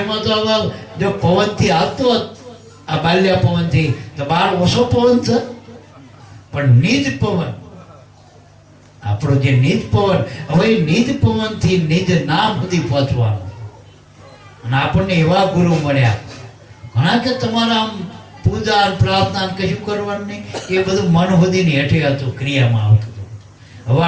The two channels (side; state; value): both; identical; correlation 1.00